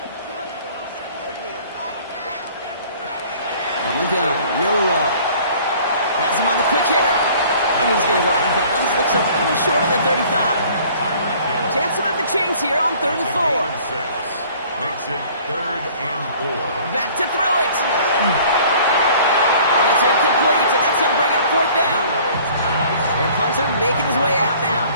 On the gun, Milroe. Has him on the quick hitter. And he's going to go out of bounds. Looks a little short of the 35. Chance to move the chains here on 3rd and 4. Makes it 3rd and 4. Back to throw it. And it's incomplete, and that's going to bring up 4th down. Their punter making his way out now.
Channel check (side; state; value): both; inverted; correlation -0.52